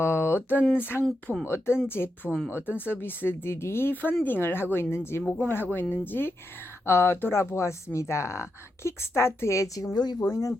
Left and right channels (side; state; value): both; normal; correlation 0.86